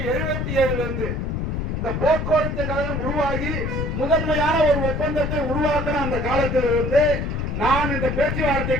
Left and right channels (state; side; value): noise; left; rumble, 2 dB below the sound